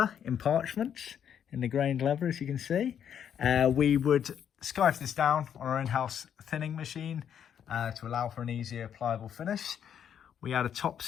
in parchment, in the grained leather, as you can see. We would scarf this down on our in-house thinning machine to allow for an easier pliable finish. We add a top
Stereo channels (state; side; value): quieter; right; 8.8 dB